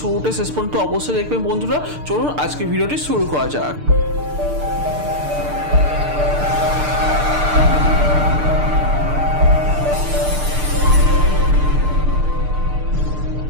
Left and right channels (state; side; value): late; left; 6.7 ms